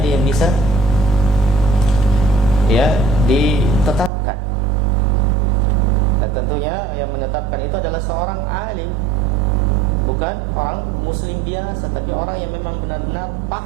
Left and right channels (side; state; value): left; drops out; at 4.1 s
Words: yang bisa ya ditetapkan. Dan tentunya yang menetapkan itu adalah seorang alim, bukan orang muslim biasa, tapi orang yang memang benar-benar